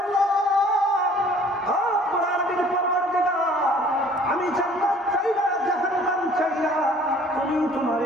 আল্লাহ, আমি জান্নাত চাই না, জাহান্নাম চাই না, তুমি তোমার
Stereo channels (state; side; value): normal; both; correlation 0.53